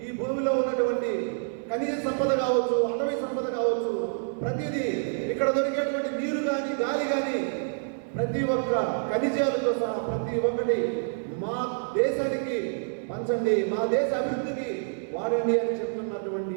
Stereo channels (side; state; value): left; silent; digital silence